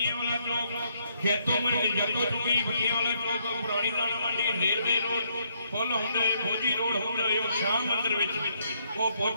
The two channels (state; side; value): inverted; both; correlation -0.72